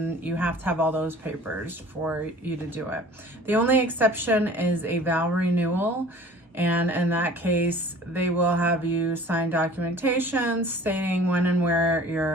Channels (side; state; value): both; normal; correlation 0.46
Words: you have to have all those papers for you to do it. The only exception is a vow renewal. And in that case, they will have you sign documentation stating when and where